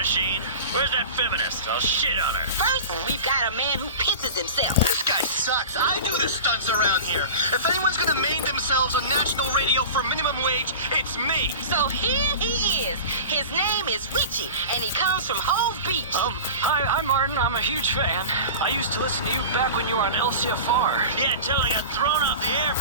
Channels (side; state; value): both; inverted; correlation -0.33